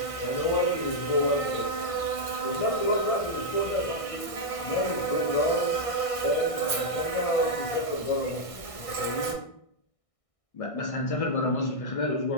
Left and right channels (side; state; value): right; late; 1.6 ms